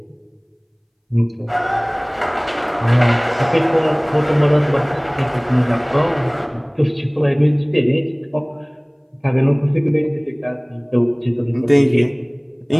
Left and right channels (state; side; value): identical; both; correlation 1.00